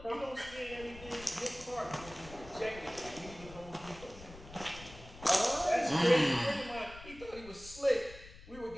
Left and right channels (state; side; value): noise; left; rumble, 17 dB below the sound